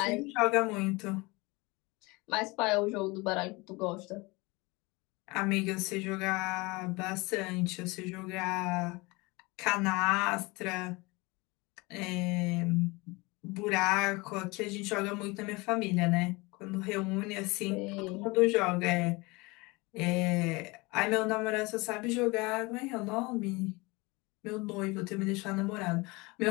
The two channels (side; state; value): right; quieter; 24.8 dB